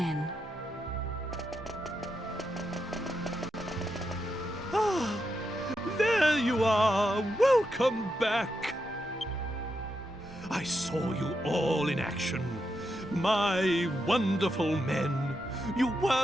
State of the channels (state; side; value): normal; both; correlation 0.84